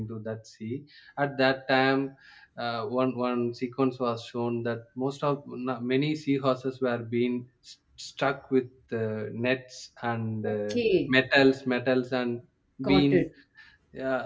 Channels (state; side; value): identical; both; correlation 1.00